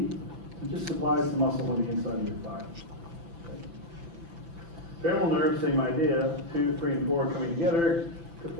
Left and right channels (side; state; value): left; late; 5.9 ms